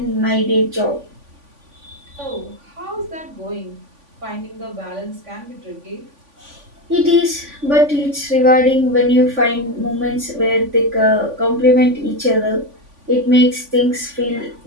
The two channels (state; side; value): late; left; 3.5 ms